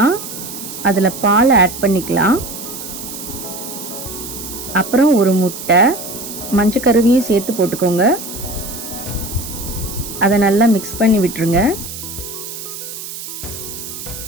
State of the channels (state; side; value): noise; right; hiss, 10 dB below the sound